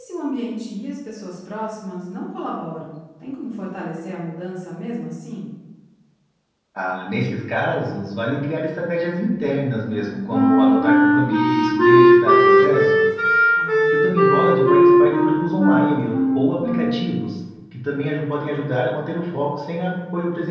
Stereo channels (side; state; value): both; identical; correlation 1.00